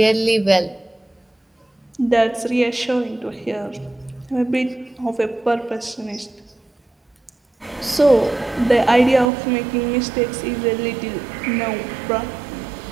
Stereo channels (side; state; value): left; drops out; at 9.3 s